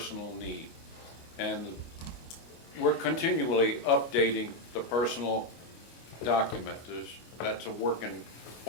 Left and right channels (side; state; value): right; late; 25 ms